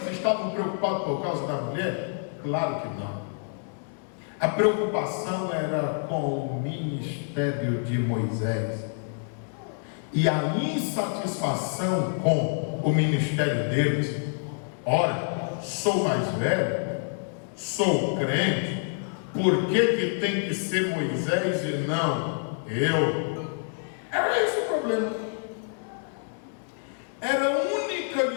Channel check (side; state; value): right; silent; 60 dB below the other